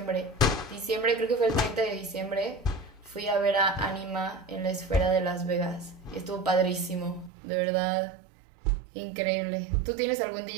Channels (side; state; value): left; drops out; at 7.3 s